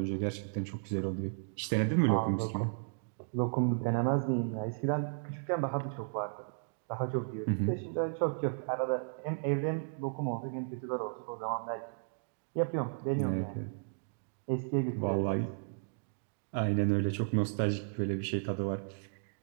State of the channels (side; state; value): left; silent; digital silence